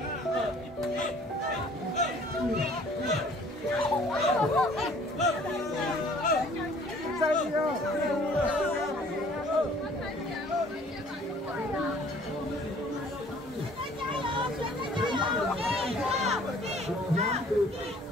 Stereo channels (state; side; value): normal; both; correlation 0.55